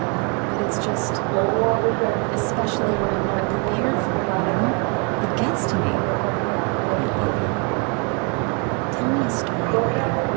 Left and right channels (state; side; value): quieter; left; 34.8 dB